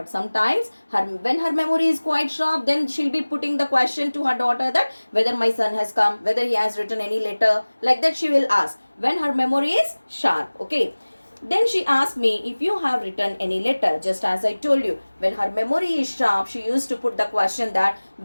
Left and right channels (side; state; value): both; inverted; correlation -1.00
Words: sometimes when her memory is quite sharp, then she'll be putting the question to her daughter that whether my son has come, whether he has written any letter. Like that she will ask when her memory is sharp. Okay. Then she asked me if you have written any letter. Just as I told you, when her memory is sharp, she used to put the question that